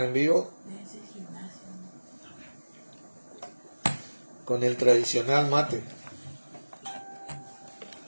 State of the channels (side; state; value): both; inverted; correlation -1.00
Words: en vivo con el tradicional mate.